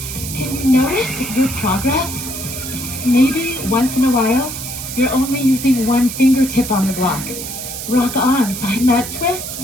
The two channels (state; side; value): noise; right; hiss, 7 dB below the sound